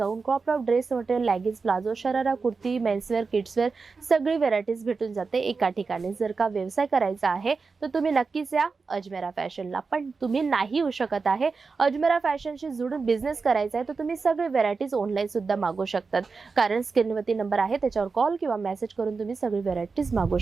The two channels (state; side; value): quieter; left; 4.6 dB